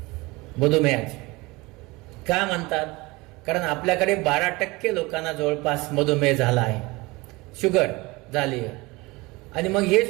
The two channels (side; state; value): left; quieter; 23.2 dB